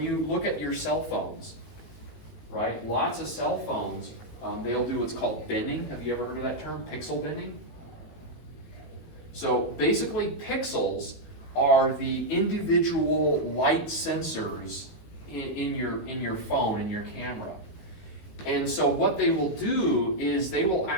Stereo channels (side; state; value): right; late; 18 ms